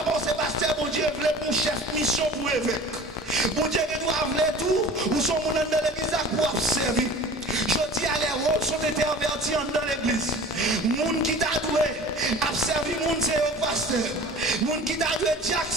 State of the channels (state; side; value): normal; both; correlation 0.41